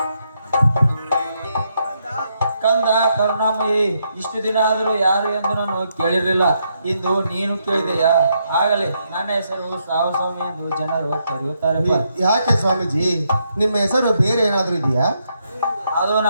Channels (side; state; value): both; inverted; correlation -0.78